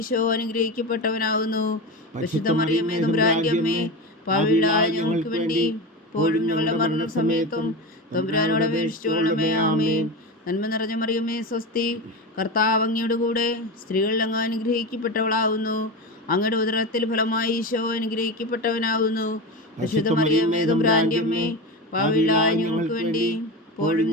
അനുഗ്രഹിക്കപ്പെട്ടവനാകുന്നു. പരിശുദ്ധ മറിയമേ തമ്പുരാന്റെ അമ്മേ, പാപികളായ ഞങ്ങൾക്ക് വേണ്ടി ഇപ്പോഴും ഞങ്ങളുടെ മരണസമയത്തും തമ്പുരാനോട് അപേക്ഷിച്ചുകൊള്ളണമേ. ആമേൻ. നന്മ നിറഞ്ഞ മറിയമേ സ്വസ്തി, കർത്താവ് അങ്ങയുടെ കൂടെ സ്ത്രീകളിൽ അങ്ങ് അനുഗ്രഹിക്കപ്പെട്ടവളാകുന്നു. അങ്ങയുടെ ഉദരത്തിൽ ഫലമായി ഈശോ അനുഗ്രഹിക്കപ്പെട്ടവനാകുന്നു. പരിശുദ്ധ മറിയമേ തമ്പുരാന്റെ അമ്മേ, പാപികളായ ഞങ്ങൾക്ക് വേണ്ടി ഇപ്പോഴും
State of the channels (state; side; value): normal; both; correlation 0.22